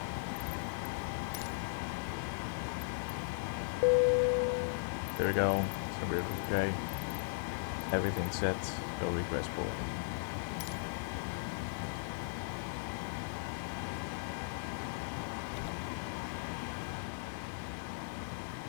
There we go. So we're okay. Everything's set. Go request boarding.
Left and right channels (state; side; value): silent; right; 53 dB below the other